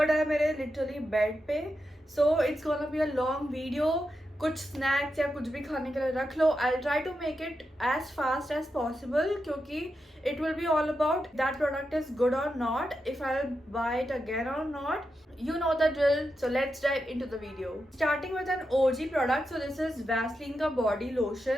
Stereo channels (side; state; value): both; normal; correlation 0.87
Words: है मेरे लिटरली बेड पे. So it's gonna be a long video. कुछ स्नैक्स या कुछ भी खाने के लिए रख लो. I try to make it as fast as possible क्योंकि it will be all about that product is good or not, if I'll buy it again or not. You know the drill, so let's dive into the video. Starting with an OG product. So this is Vaseline ka body